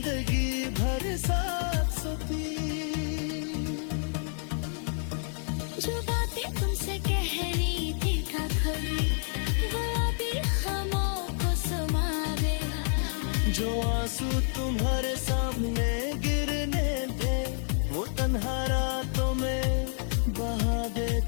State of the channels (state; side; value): silent; right; 59 dB below the other